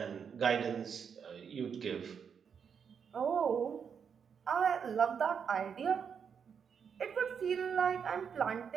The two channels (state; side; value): quieter; left; 6.9 dB